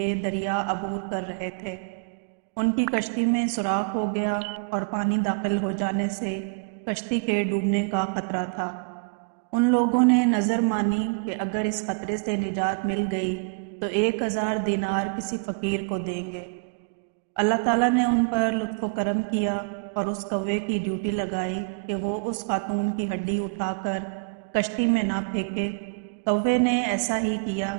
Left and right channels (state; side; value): quieter; left; 36.1 dB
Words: دریا عبور کر رہے تھے۔ ان کی کشتی میں سوراخ ہو گیا اور پانی داخل ہو جانے سے کشتی کے ڈوبنے کا خطرہ تھا۔ ان لوگوں نے نظر مانی کہ اگر اس خطرے سے نجات مل گئی تو 1000 دینار کسی فقیر کو دیں گے۔ اللہ تعالیٰ نے ان پر لطف و کرم کیا اور اس کوے کی ڈیوٹی لگائی کہ وہ اس خاتون کی ہڈی اٹھا کر کشتی میں نہ پھینکے۔ کوے نے ایسا ہی کیا۔